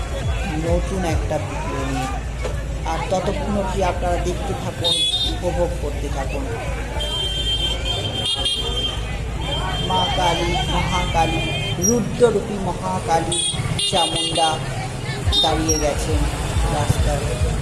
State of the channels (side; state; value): both; identical; correlation 1.00